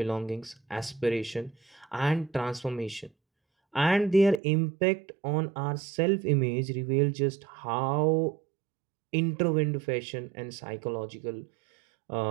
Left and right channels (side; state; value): left; drops out; at 4.4 s